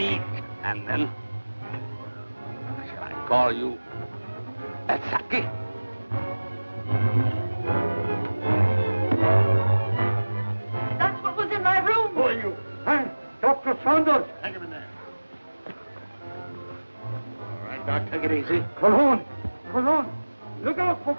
And then, shall I call you Saki? That's what was in my room. Who are you? Huh? Dr. Saunders. Hang him in there. All right, Doc, take it easy. Cologne. Cologne. Look out for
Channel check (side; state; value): both; inverted; correlation -1.00